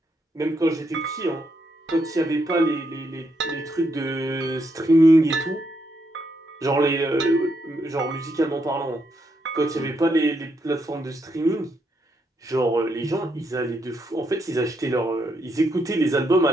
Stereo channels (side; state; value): both; normal; correlation 0.78